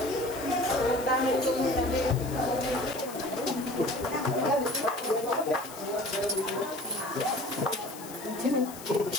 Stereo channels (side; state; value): left; noise; hiss, 15 dB below the sound